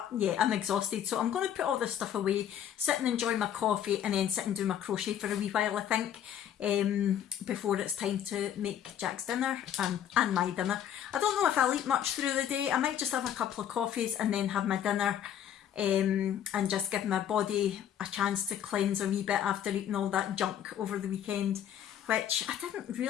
yeah, I'm exhausted. So I'm going to put all this stuff away, sit and enjoy my coffee, and then sit and do my crochet for a wee while, I think, before it's time to make Jack's dinner and my dinner. I don't know if I'll eat much through the day. I might just have a couple of coffees and then have my dinner and just give my body a chance to cleanse a wee bit after eating all that junk over the weekend, which I didn't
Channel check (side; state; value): right; quieter; 9.9 dB